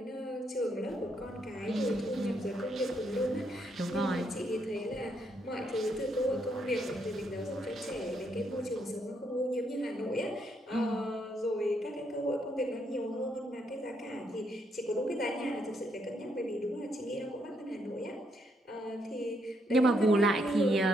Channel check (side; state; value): both; normal; correlation 0.75